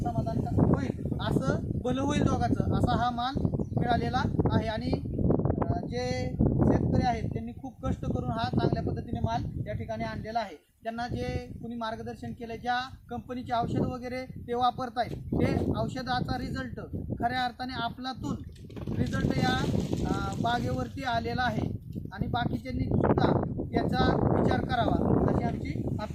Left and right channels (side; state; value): both; identical; correlation 1.00